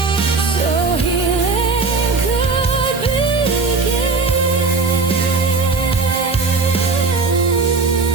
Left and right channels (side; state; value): left; quieter; 4.2 dB